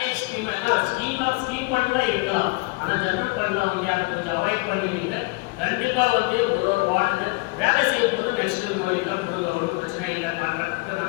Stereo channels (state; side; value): quieter; right; 26.5 dB